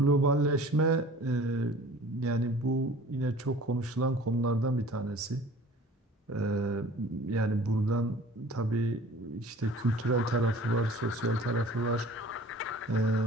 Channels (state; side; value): normal; both; correlation 0.46